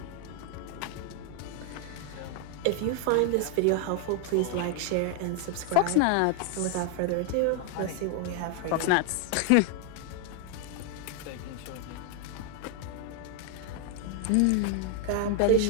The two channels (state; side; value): different; both; correlation 0.00